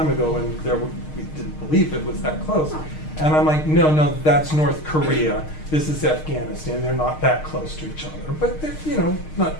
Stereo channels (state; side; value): late; right; 6.5 ms